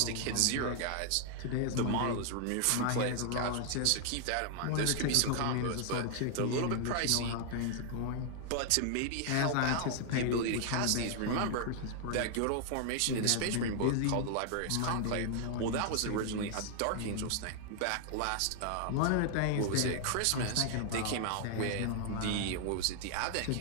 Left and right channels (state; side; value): different; both; correlation 0.00